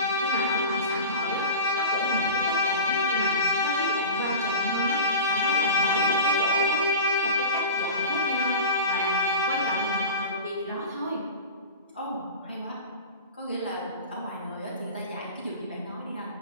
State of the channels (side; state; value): both; inverted; correlation -0.33